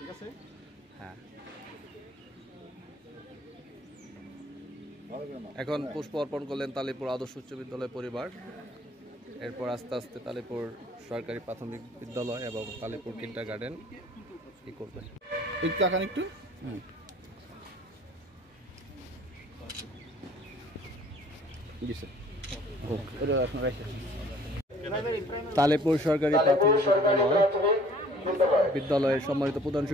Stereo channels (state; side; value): normal; both; correlation 0.53